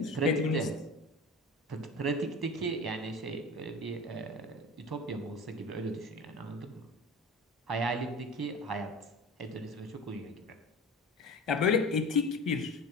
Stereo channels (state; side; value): normal; both; correlation 0.33